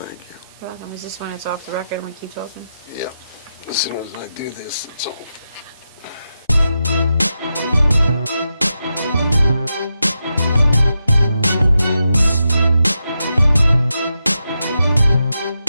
you. You're welcome. Is this when it's off the record and we keep talking? Yeah. As soon as I do this, it's all.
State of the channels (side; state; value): both; inverted; correlation -0.87